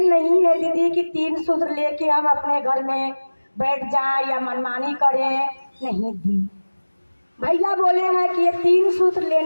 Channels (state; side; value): inverted; both; correlation -1.00